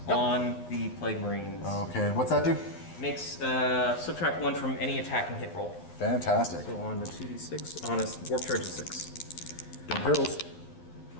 on the Plague Marines. Okay, and what's that do? Makes subtract 1 from any attack and hit roll. Fantastic. So on the 2d6, on a warp charge of 6. Don't perils.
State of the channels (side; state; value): right; late; 11 ms